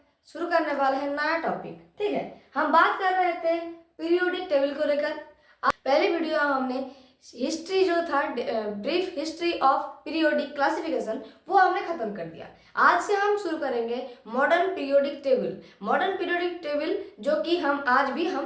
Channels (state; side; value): identical; both; correlation 1.00